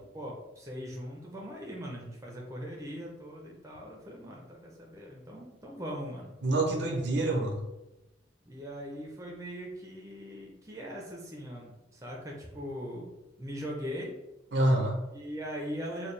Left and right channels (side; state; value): both; normal; correlation 0.63